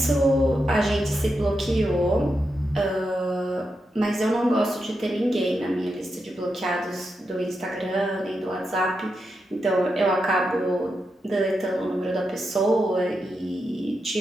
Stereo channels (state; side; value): normal; both; correlation 0.86